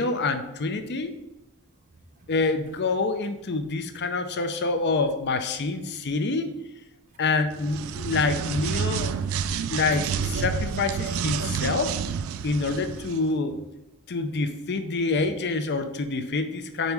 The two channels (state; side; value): normal; both; correlation 0.18